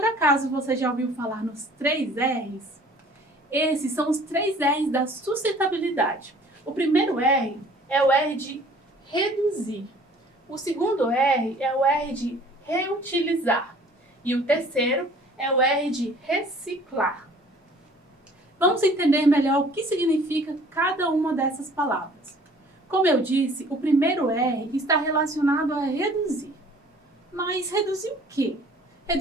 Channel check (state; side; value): normal; both; correlation 0.52